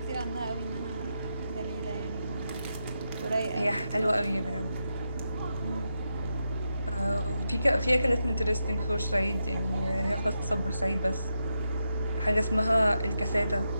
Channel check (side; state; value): both; inverted; correlation -0.86